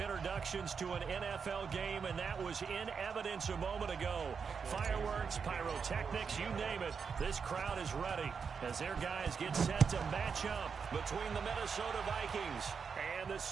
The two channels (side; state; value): left; quieter; 5.9 dB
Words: to an NFL game, and that was in evidence a moment ago. Fireworks, pyrotechnics, you name it. This crowd is ready as their guys get set to match up between the Minnesota Vikings and the